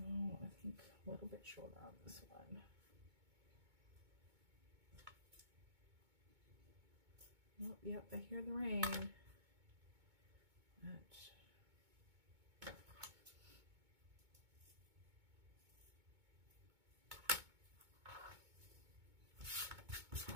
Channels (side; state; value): left; late; 2.2 ms